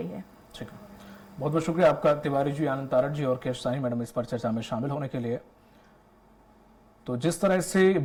है। ठीक है, बहुत बहुत शुक्रिया आपका तिवारी जी, आनंद तारड़ जी और केशसानी मैडम इस पर चर्चा में शामिल होने के लिए। तो जिस तरह से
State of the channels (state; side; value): identical; both; correlation 1.00